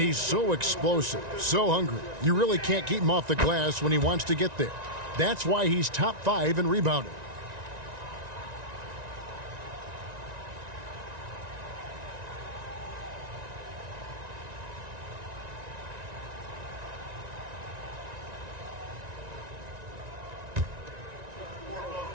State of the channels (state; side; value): late; left; 1.9 ms